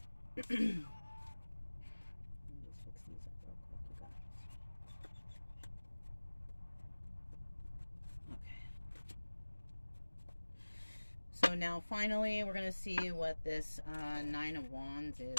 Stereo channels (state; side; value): inverted; both; correlation -1.00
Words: So now finally we're going to see what this Nine of Wands is